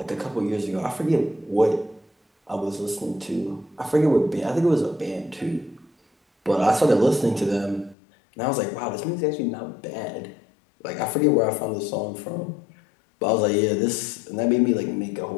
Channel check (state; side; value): drops out; right; at 8.0 s